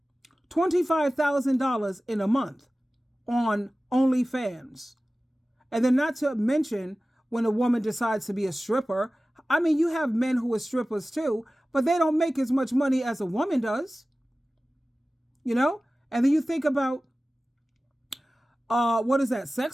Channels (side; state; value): both; normal; correlation 0.97